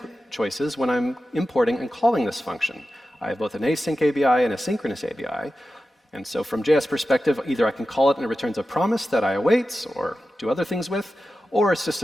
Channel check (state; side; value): normal; both; correlation 0.93